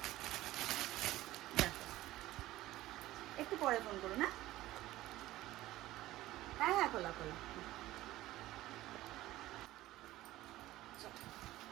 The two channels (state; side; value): quieter; left; 16.1 dB